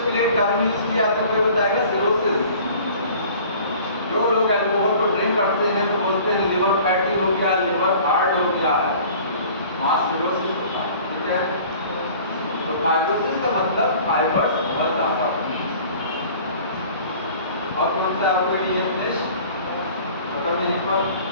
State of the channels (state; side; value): inverted; both; correlation -0.48